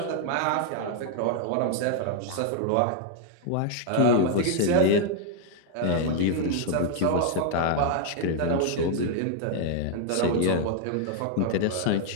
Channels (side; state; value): both; different; correlation 0.00